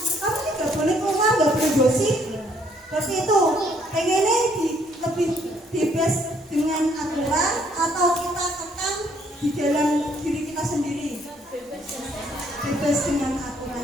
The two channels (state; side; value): normal; both; correlation 0.66